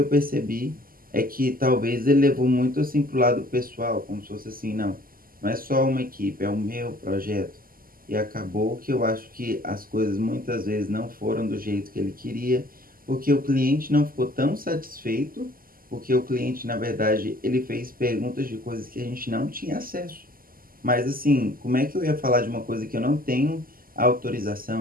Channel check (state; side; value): late; left; 0.42 ms